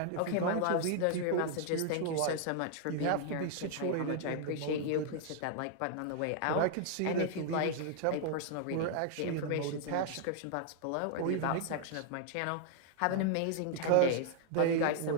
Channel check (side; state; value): both; different; correlation -0.01